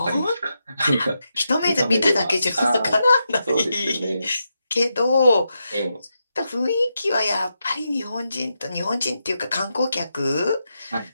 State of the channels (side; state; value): both; inverted; correlation -0.85